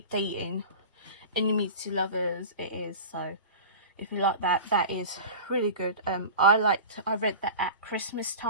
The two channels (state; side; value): inverted; both; correlation -0.34